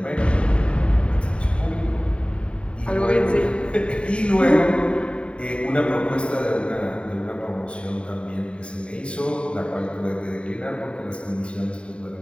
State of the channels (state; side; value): late; right; 0.056 ms